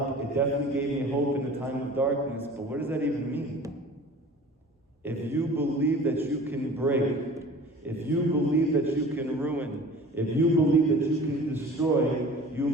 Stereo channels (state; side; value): normal; both; correlation 0.43